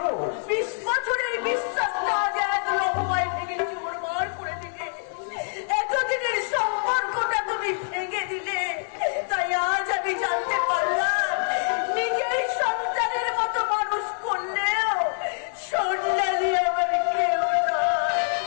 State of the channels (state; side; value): silent; right; 56 dB below the other